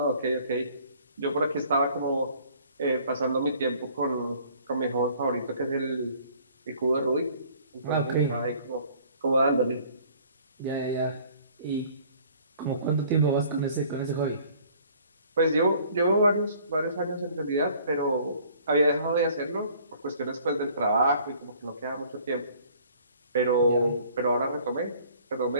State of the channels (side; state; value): both; inverted; correlation -0.55